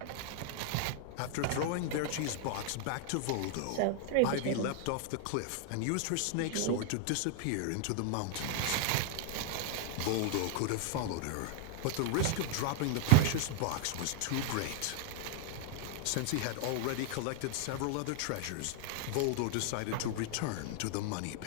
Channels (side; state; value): both; different; correlation 0.00